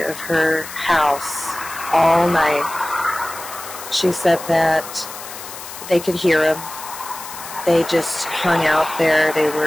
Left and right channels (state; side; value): noise; left; hiss, 12 dB below the sound